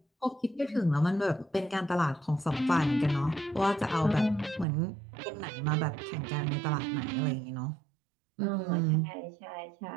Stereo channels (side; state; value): left; drops out; at 4.7 s